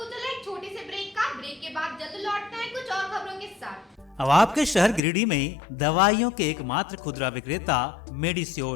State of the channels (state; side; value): drops out; right; at 5.0 s